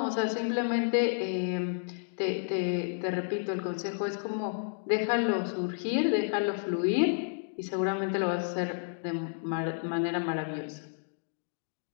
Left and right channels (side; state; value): right; silent; digital silence